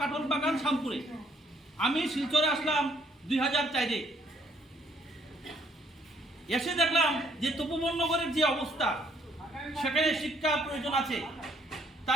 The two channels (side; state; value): both; normal; correlation 0.66